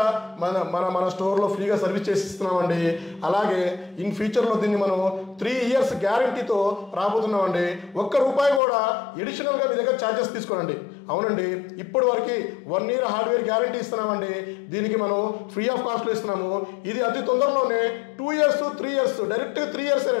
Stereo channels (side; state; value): right; drops out; at 8.6 s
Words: మన స్టోర్లో ఫ్రీగా సర్వీస్ చేసి ఇస్తున్నామండి. అలాగే ఇన్ ఫ్యూచర్లో దీన్ని మనం 3 years గ్యారంటీతో రాబోతున్నామండి. ₹1 కూడా ఎడిషనల్గా మీ దగ్గర ఛార్జెస్ తీసుకోనండి. అవునండి, ఇప్పటి వరకు 1 year హార్డ్వేర్ గ్యారంటీ ఇస్తున్నామండి. దీనికి మనం ఫ్రీ ఆఫ్ కాస్ట్లో ఇస్తున్నాము. ఇది అతి తొందరలోనే 2 years 3 years డైరెక్ట్గా 3 years